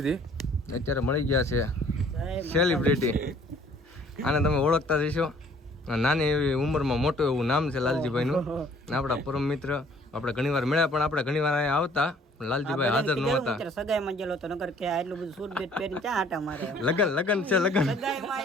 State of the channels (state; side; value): normal; both; correlation 0.57